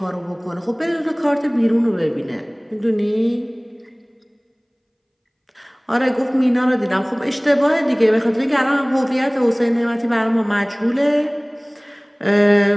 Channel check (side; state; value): both; identical; correlation 1.00